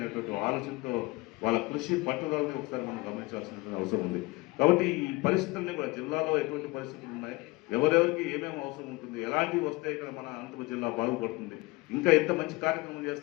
ఆలోచనతో వాళ్ళ కృషి పట్టుదలని ఒకసారి మనం గమనించాల్సినటువంటి అవసరం ఉంది. కాబట్టి ఈ పరిస్థితుల్ని కూడా జిల్లాలో ఎటువంటి పరిస్థితులు ఉన్నాయి, ఎవరెవరికి ఏమేమి అవసరం ఉంటుంది, ఎలాంటివి వస్తే ఇక్కడ మన అనంతపురం జిల్లా బాగుపడుతుంది, ఇంకా ఎంత మంచి కార్యక్రమం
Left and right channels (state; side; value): quieter; right; 23.0 dB